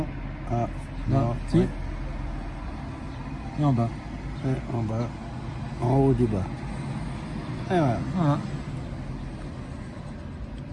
Ah, Là. non. Si. Ouais. Et en bas. Et en bas. En haut du bas. Et voilà. Voilà.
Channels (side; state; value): both; identical; correlation 1.00